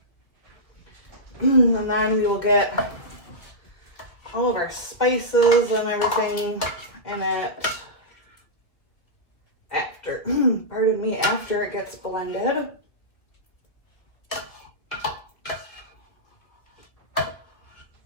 And then we will get all of our spices and everything in it after it gets blended.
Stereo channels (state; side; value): late; right; 1.8 ms